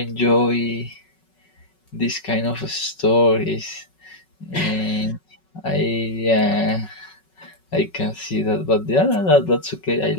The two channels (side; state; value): right; late; 5.4 ms